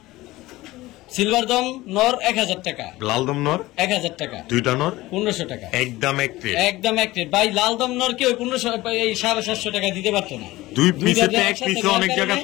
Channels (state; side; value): quieter; right; 18.3 dB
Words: সিলভার দম নর 1000 টাকা, লাল দম নর 1000 টাকা, দুইটা নর 1500 টাকা, একদম একটে। একদম এক রেট ভাই। লাল দম নর কি ওই 1500, এই 750 টাকা দিতে পারতো না। দুই দুই পিসেতে জায়গায় এক একসাথে পিসে নেওয়ার অনেক কারণে-